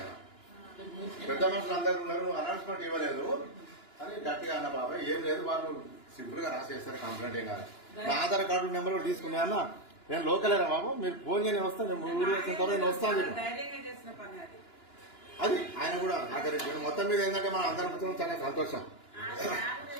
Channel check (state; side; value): late; right; 2.9 ms